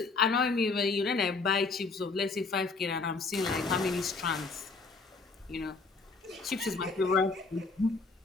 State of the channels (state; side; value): quieter; right; 4.1 dB